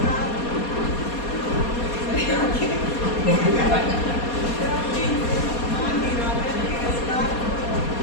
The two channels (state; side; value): late; right; 4.2 ms